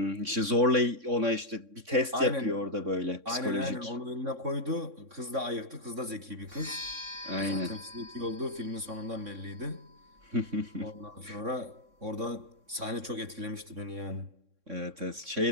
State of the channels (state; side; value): late; left; 3.6 ms